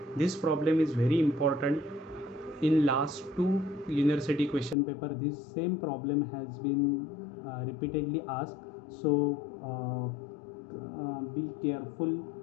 This problem is very important. In last two university question paper this same problem has been repeatedly asked, so be careful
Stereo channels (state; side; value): drops out; right; at 4.8 s